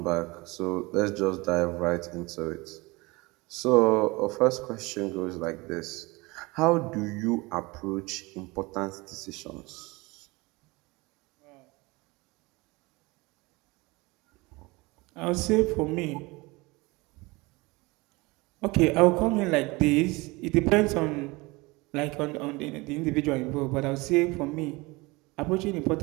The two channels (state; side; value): quieter; left; 23.8 dB